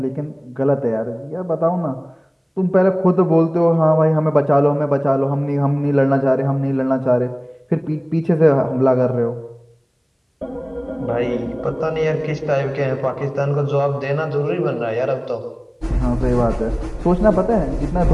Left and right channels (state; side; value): identical; both; correlation 1.00